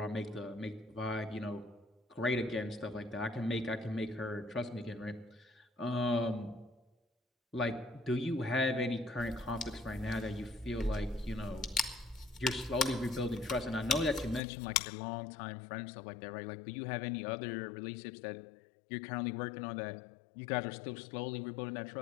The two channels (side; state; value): right; drops out; at 14.4 s